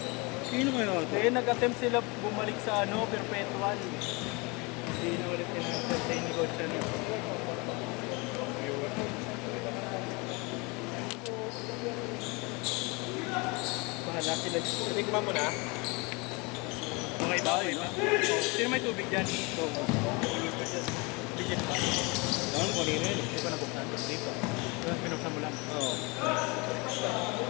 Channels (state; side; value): quieter; right; 28.0 dB